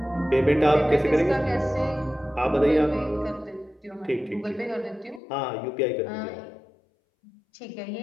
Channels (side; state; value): right; drops out; at 5.2 s